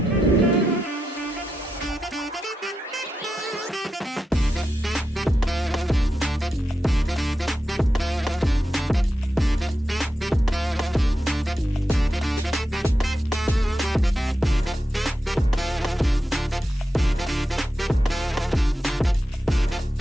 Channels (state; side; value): normal; both; correlation 0.88